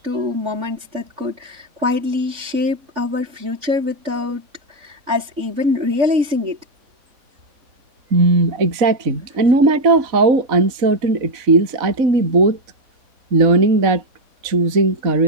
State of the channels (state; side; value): late; left; 3.4 ms